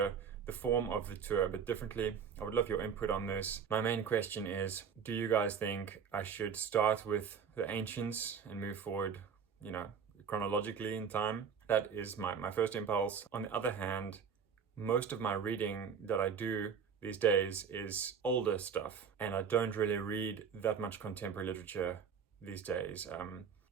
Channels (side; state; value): left; quieter; 6.8 dB